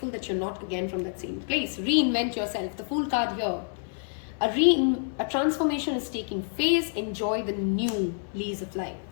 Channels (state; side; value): silent; right; digital silence